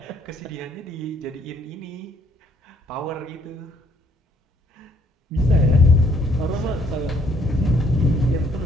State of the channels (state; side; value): normal; both; correlation 0.65